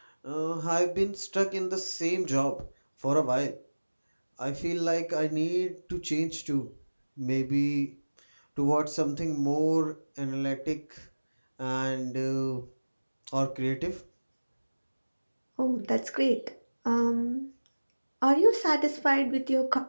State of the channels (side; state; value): both; inverted; correlation -1.00